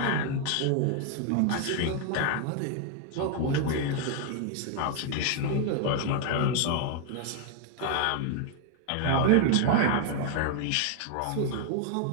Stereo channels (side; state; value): both; different; correlation 0.00